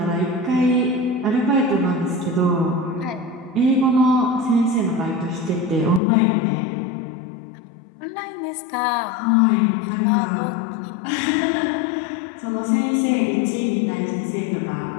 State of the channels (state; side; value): drops out; right; at 6.0 s